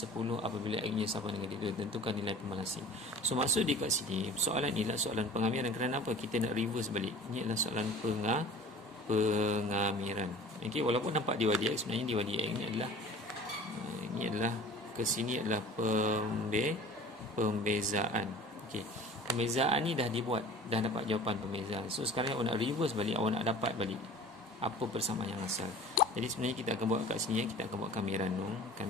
apabila x-nya sama dengan 3. Tentukan nilai pemalasing. So maksud di kat sini, soalan ni adalah soalan pengamiran. Kerana apa? Kita nak reverse balik. Ini adalah soalan pengamiran. Okey, walaupun nampak dy dx, sebenarnya dy dx ini adalah ke sini adalah pembezaan. Okey. Pembezaan ni dah dibuat, dah dapat jawapan pembezaan. So sekarang awak nak reverse balik, awak nak dapat balik apa persamaan yang asal. Jadi sebenarnya kita akan buat kat sini, kita akan buat kamiran dong.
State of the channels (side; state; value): both; normal; correlation 0.43